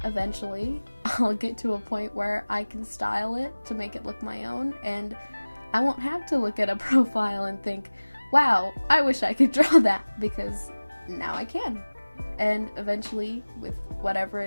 eventually I'll get to a point where I can style it to make it look my own, and I won't have to look at a profile and think, wow, I wish I could draw that, because now I can. And eventually, with whatever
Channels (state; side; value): inverted; both; correlation -1.00